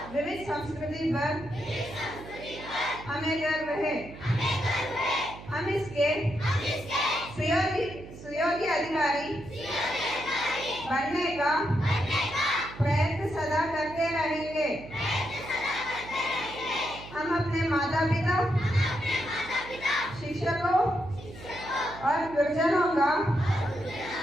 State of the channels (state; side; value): noise; right; hum, 15 dB below the sound